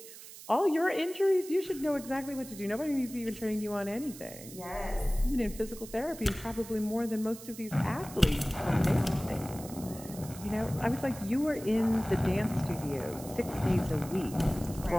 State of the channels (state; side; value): noise; right; hiss, 15 dB below the sound